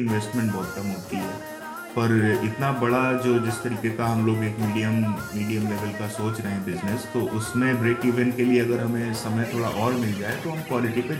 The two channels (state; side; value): identical; both; correlation 1.00